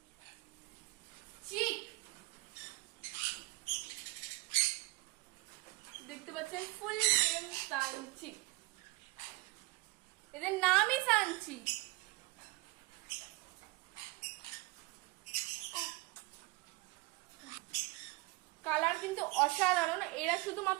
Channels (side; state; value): left; quieter; 22.2 dB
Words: দেখতে পাচ্ছেন ফুল নেম সানচি, এদের নামই সানচি। কালার কিন্তু অসাধারণ। এরা